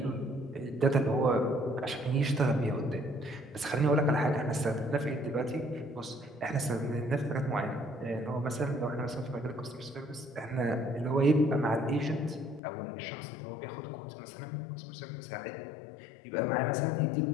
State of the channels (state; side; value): drops out; right; at 12.6 s